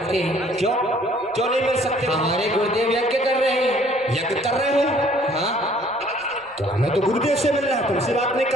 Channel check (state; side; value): noise; right; rumble, 30 dB below the sound